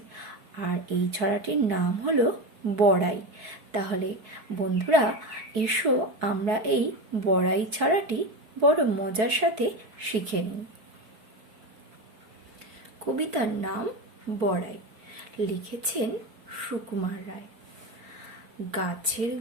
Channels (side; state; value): left; late; 4.6 ms